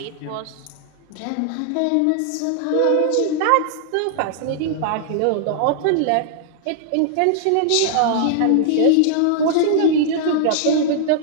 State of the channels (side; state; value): both; different; correlation -0.01